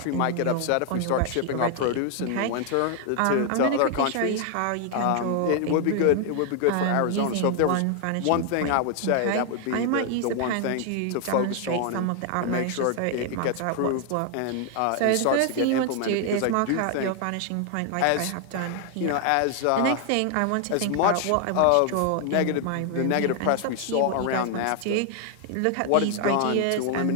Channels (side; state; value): both; different; correlation 0.00